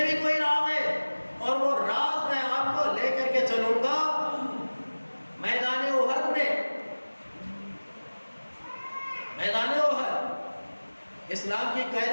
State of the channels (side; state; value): both; inverted; correlation -1.00